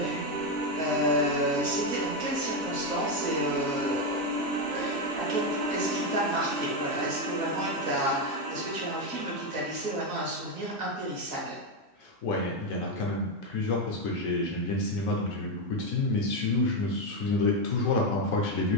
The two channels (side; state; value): both; normal; correlation 0.07